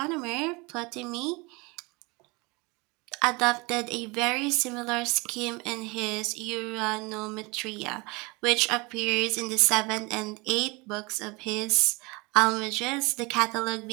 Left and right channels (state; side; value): quieter; left; 26.5 dB